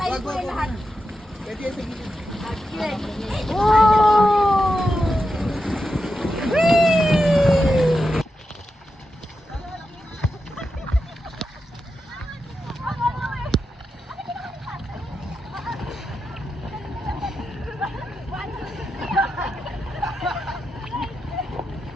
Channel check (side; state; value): both; normal; correlation 0.88